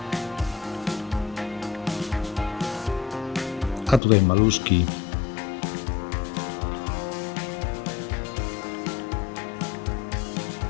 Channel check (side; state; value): right; drops out; at 4.0 s